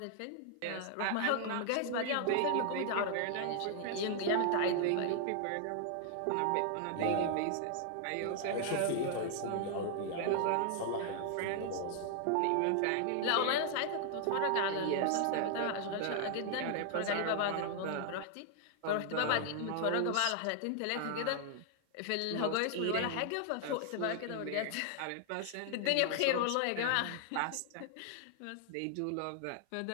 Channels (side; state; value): both; different; correlation 0.00